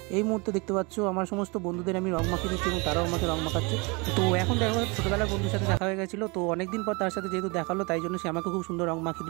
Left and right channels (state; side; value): quieter; left; 28.7 dB